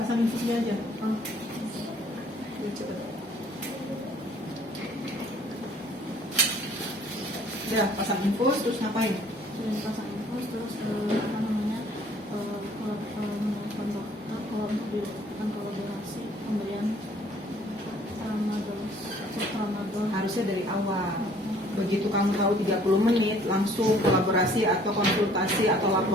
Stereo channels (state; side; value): normal; both; correlation 0.57